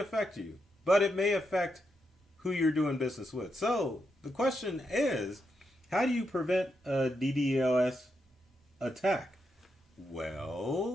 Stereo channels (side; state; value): both; normal; correlation 0.83